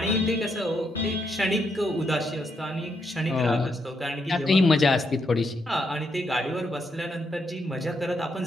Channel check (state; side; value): normal; both; correlation 0.79